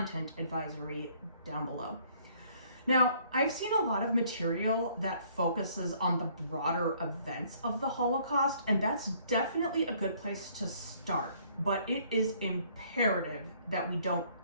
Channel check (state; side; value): inverted; both; correlation -0.62